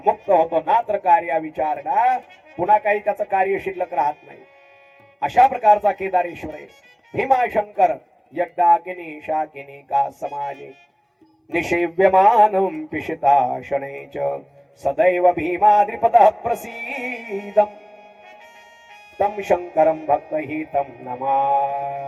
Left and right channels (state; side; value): identical; both; correlation 1.00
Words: मुक्त होतो. नात्र कार्या विचारणा. पुन्हा काही त्याचं कार्य शिल्लक राहत नाही. अशा प्रकारचा केदारेश्वर आहे. भीमाशंकर यज्ञाकिनी शाकिनी का समाजे निषेव्यमानं पिशिता शनै च सदैव भीमाद्रिपदः प्रसीदं तं शंकरं भक्तहितं